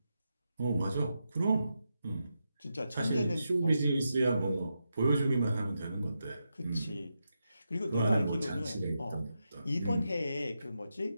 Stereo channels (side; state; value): both; inverted; correlation -0.87